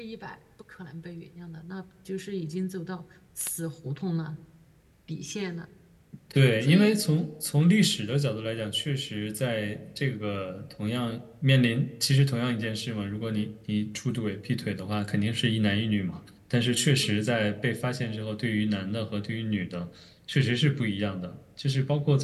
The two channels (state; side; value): identical; both; correlation 1.00